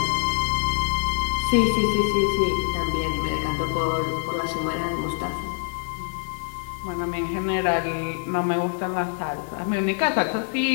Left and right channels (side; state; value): right; silent; digital silence